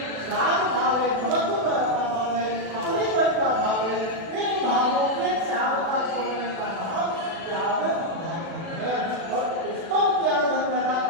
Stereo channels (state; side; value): late; left; 36 ms